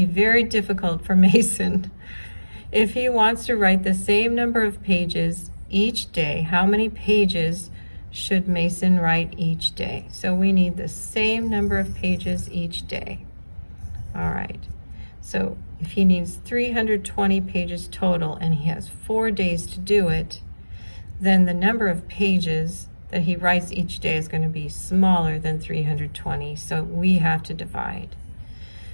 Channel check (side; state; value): both; inverted; correlation -1.00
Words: be very difficult for Mason. If he wants to write the same number of pages each day, how many pages should Mason write each day? So we need the same number of pages each day. All right, so if he needs 320 pages total and he has 4 days to do it, then the number of pages that he writes each day is going to be smaller than 320, so we have to divide.